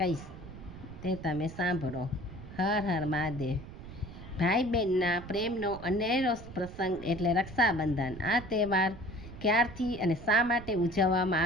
તે તમે સાંભળો. હર હર મહાદેવ. ભાઈ બહેનના પ્રેમનો અનેરો પ્રસંગ એટલે રક્ષાબંધન. આ તહેવાર ક્યારથી અને શા માટે ઉજવવામાં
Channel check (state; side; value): noise; right; rumble, 14 dB below the sound